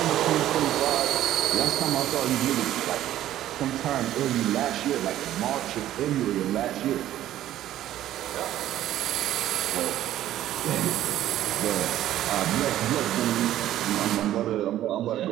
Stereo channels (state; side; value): quieter; left; 12.9 dB